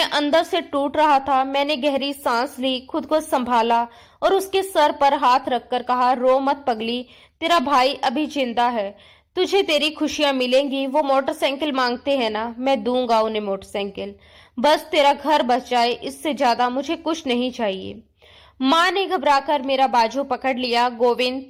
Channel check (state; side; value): identical; both; correlation 1.00